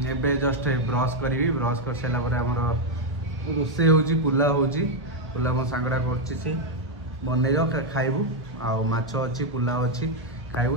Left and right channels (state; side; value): normal; both; correlation 0.02